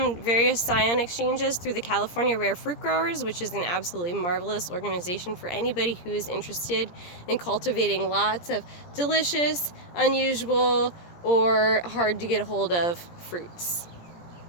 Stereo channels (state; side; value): late; right; 17 ms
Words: various scion exchanges through the California Rare Fruit Growers, which is an absolutely marvelous organization for anybody who is interested in cultivating lots of delicious, unusual, or hard to get a hold of fruits.